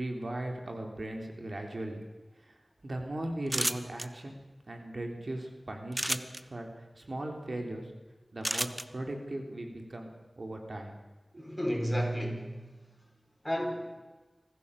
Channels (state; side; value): normal; both; correlation 0.98